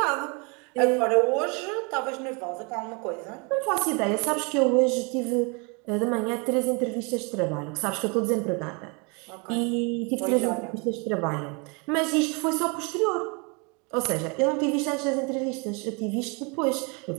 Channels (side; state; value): left; quieter; 31.9 dB